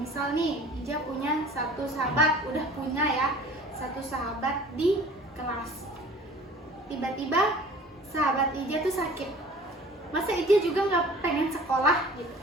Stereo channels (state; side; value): normal; both; correlation 0.47